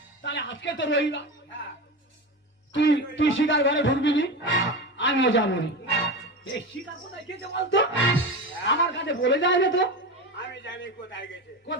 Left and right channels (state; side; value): normal; both; correlation 0.23